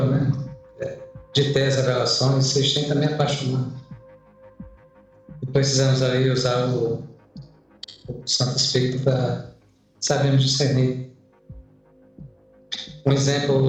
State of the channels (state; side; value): identical; both; correlation 1.00